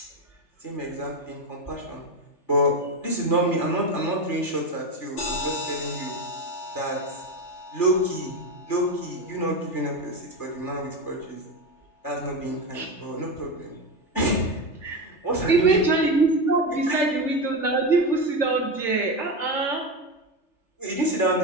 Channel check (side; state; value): right; late; 3.3 ms